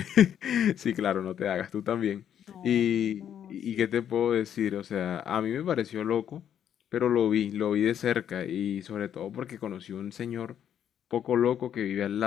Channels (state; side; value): quieter; right; 9.5 dB